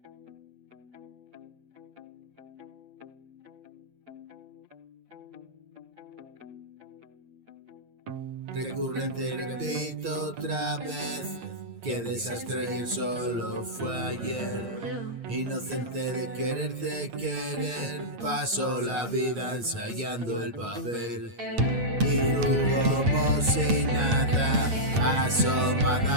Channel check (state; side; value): late; left; 8.6 ms